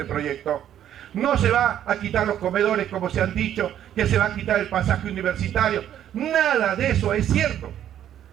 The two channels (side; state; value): left; quieter; 10.7 dB